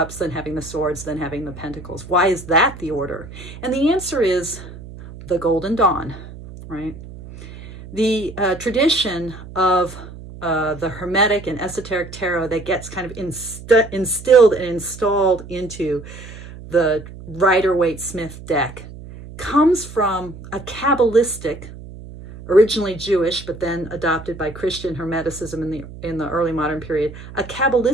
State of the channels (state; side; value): noise; right; hum, 15 dB below the sound